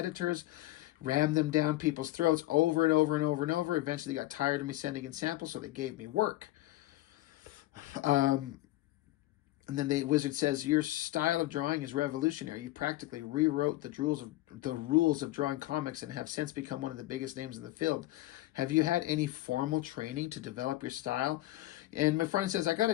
rammed them down people's throats over and over and over and over. Eventually got tired of me sending in samples, so they gave me work. And then the wizard says, your style of drawing is revolutionary. You practically rewrote the rules of drawing comics and have since become one of the biggest names in the field. Have you had any formal training to develop your style? And my friend says, I got a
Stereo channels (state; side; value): quieter; right; 17.0 dB